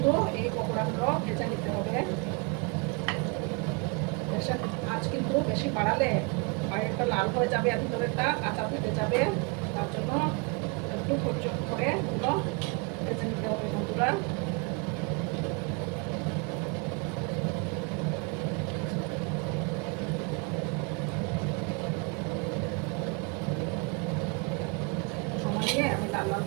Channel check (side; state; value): left; quieter; 31.9 dB